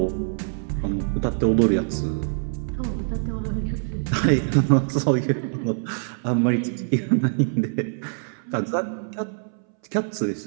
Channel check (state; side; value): silent; left; 61 dB below the other